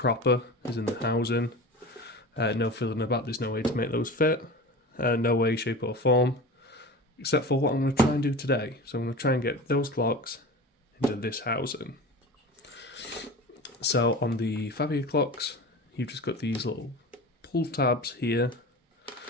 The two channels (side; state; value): both; normal; correlation 0.33